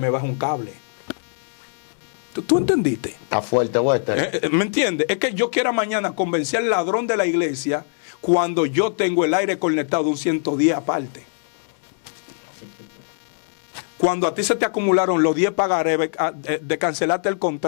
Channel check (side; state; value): right; silent; digital silence